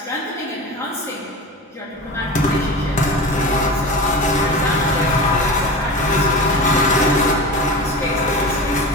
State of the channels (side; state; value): both; normal; correlation 0.30